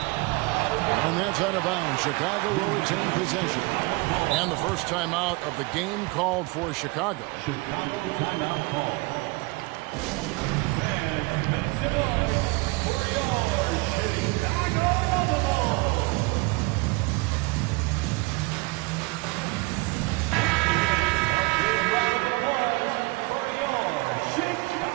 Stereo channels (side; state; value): left; quieter; 25.6 dB